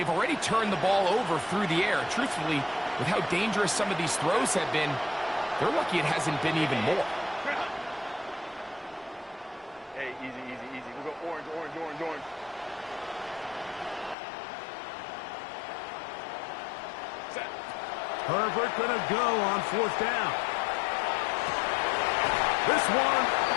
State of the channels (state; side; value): drops out; right; at 14.2 s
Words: already turned the ball over through the air. Truthfully, with how dangerous some of these throws have been, they're lucky it hasn't been even more. Hey, easy, easy, easy. We'll go orange, orange, orange, orange. Set. Herbert going to go on 4th down. This one